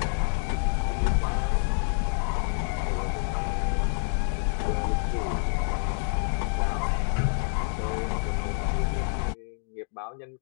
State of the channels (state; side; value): silent; right; digital silence